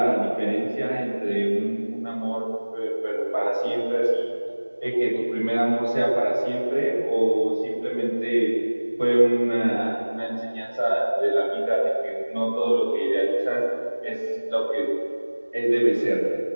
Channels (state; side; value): inverted; both; correlation -1.00